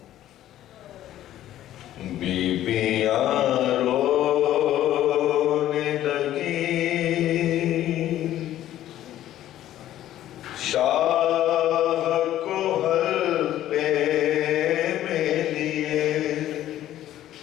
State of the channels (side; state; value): right; quieter; 12.8 dB